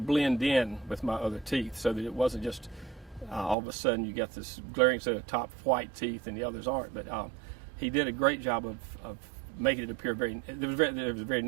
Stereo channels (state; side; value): drops out; left; at 3.6 s